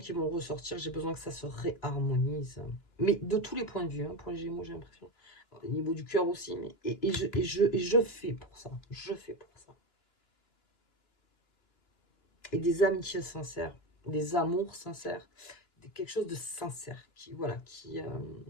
vont ressortir, j'ai besoin que ça se réharmonise. Mais de tous les points de vue, hein, pour les Gémeaux, j'ai l'impression. Au niveau du cœur aussi, mais je fais pour ça. Je fais pour ça. Et des amitiés sincères, des amours sincères, quelque chose de sincère, voilà, qui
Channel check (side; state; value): right; late; 2.9 ms